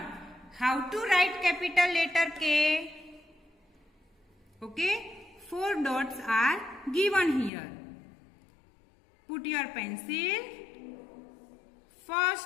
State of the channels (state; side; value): drops out; right; at 7.5 s